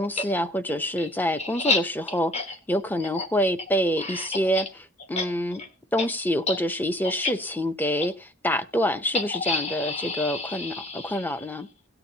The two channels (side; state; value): both; normal; correlation 0.54